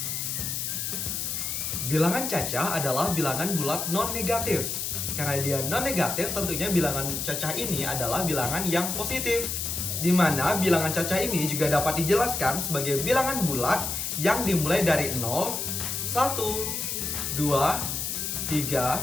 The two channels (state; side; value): noise; left; hiss, 2 dB below the sound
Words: Bilangan cacah adalah bilangan bulat non-negatif. Karena dia non-negatif, tentunya bilangan cacah ini adalah bilangan yang positif. Di mana bilangan cacah ini juga dapat dijelaskan sebagai bilangan bulat yang dimulai dari 0, 1, 2, 3,